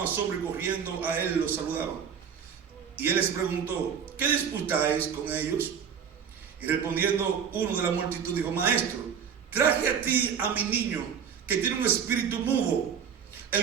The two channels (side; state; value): left; quieter; 7.5 dB